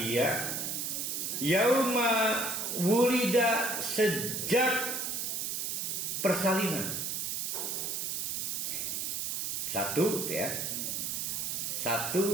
yauma wulida, sejak persalinan. Satu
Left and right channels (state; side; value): noise; right; hiss, 1 dB below the sound